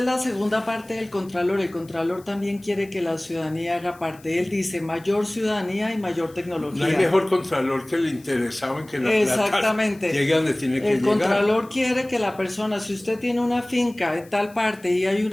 la segunda parte del Contralor. El Contralor también quiere que la ciudadanía haga parte. Él dice mayor ciudadanía y mayor tecnología. No hay mejor contralor que el interesado en que la Exactamente. plata llegue donde tiene que llegar. El Contralor quiere que la persona, si usted tiene una finca en tal parte y hay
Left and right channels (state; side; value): noise; left; hiss, 26 dB below the sound